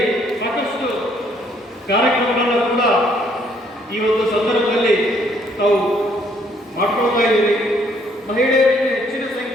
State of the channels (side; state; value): both; normal; correlation 0.66